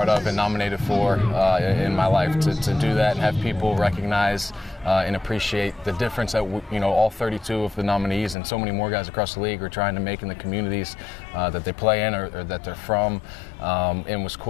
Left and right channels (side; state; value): right; drops out; at 8.3 s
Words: of and nominated for in my life. To do that and have people recognize and appreciate the difference that all 32 of the nominees and so many more guys across the league are trying to make in the communities that they play in or that they're from, and was